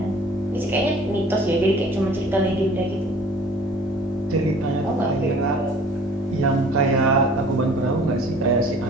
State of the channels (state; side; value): normal; both; correlation 0.50